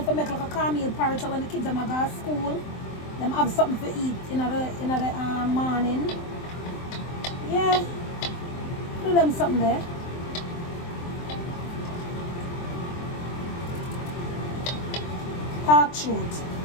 for make like a cornmeal porridge so when the kids them go to school, them have something to eat in the morning. Yeah. Do them something there. Talk truth.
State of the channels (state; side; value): late; right; 23 ms